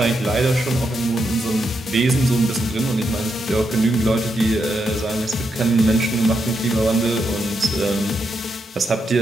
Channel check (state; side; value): normal; both; correlation 0.82